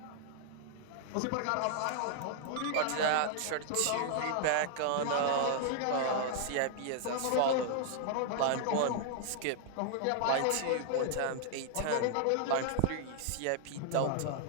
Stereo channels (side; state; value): both; different; correlation -0.01